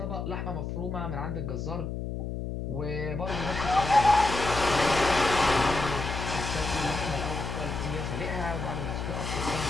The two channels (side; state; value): left; noise; hum, 4 dB below the sound